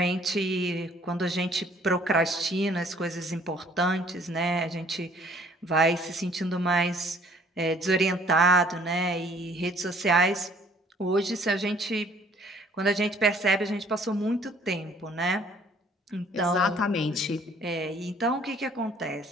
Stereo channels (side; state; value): both; normal; correlation 0.59